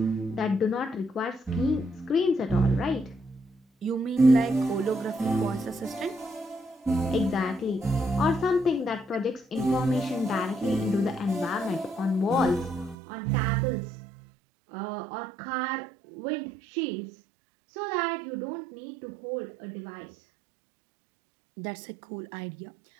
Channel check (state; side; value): drops out; left; at 13.0 s